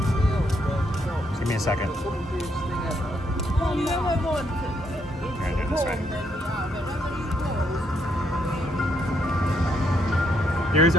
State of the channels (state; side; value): normal; both; correlation 0.75